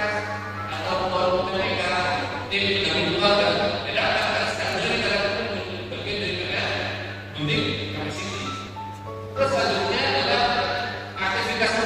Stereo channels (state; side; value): identical; both; correlation 1.00